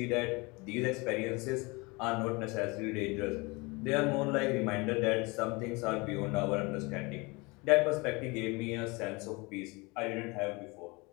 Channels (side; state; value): right; quieter; 26.3 dB